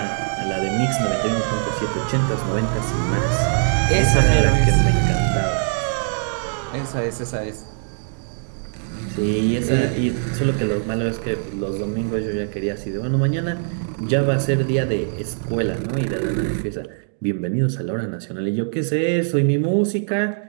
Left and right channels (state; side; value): silent; left; 64 dB below the other